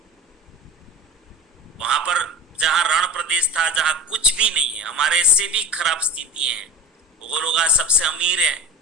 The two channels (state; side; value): normal; both; correlation 0.34